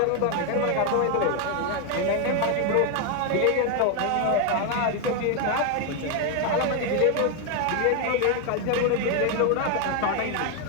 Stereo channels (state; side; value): different; both; correlation 0.01